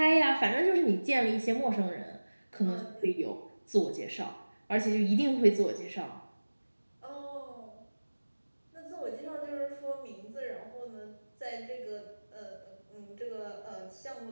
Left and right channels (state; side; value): inverted; both; correlation -1.00